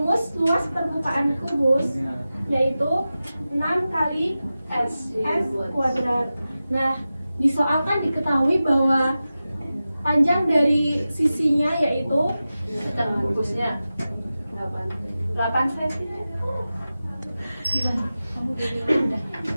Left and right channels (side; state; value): both; inverted; correlation -0.94